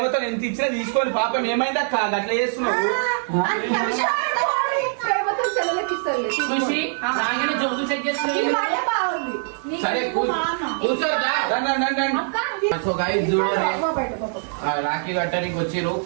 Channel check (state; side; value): silent; left; digital silence